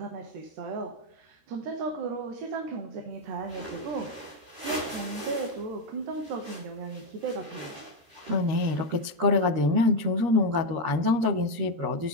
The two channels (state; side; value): late; left; 13 ms